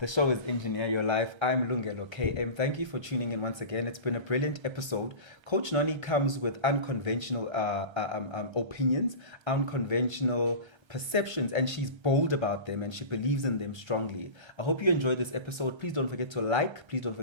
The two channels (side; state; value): left; late; 1.3 ms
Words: show is Engineer Your Life. I'm Lungelo KM. Thank you for tuning in once again. It's been a brilliant episode. Coach Noni comes with unconventional opinions, unconventional perceptions, and she's bold about them and she believes in them strongly. I hope you enjoyed this episode. Please don't forget to like, please don't